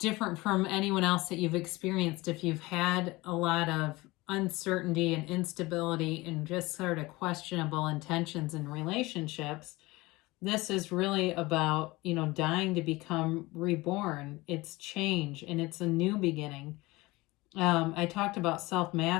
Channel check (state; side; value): quieter; right; 21.3 dB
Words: from anyone else that you've experienced. If you've had a lot of uncertainty and instability and just sort of questionable intentions in relationships, this is really about, dying to become reborn. It's change and it's a new beginning. I talked about self